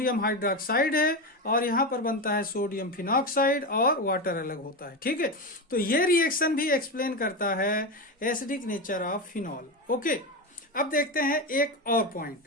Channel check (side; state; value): both; normal; correlation 0.16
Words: हाइड्रोक्साइड है और यहां पर बनता है सोडियम फिनॉक्साइड और वाटर अलग होता है। ठीक है, तो ये रिएक्शन भी एक्सप्लेन करता है acidic nature of phenol. Okay, अब देखते हैं एक और